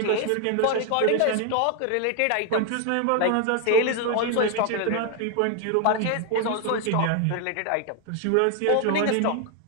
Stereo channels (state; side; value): different; both; correlation 0.01